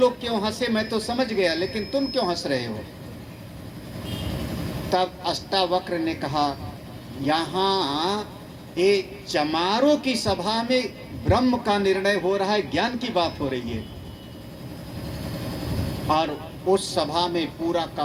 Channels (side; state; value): both; identical; correlation 1.00